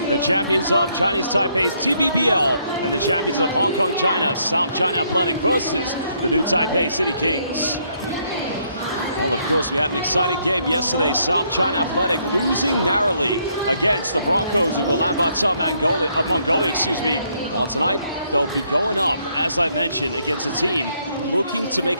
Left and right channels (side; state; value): both; inverted; correlation -0.71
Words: the champions of Chinese Taipei's TPBL and the champions of Hong Kong, China, South China Athletic versus the new Taipei City Kings. Well, of course, we had an exciting game yesterday. South China Athletic losing narrowly against the Broncos of Ulaanbaatar, Mongolia. Well, tonight they'll be going up, as I mentioned, against a team looking to make